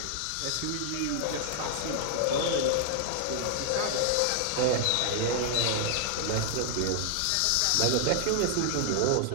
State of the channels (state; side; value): different; both; correlation 0.00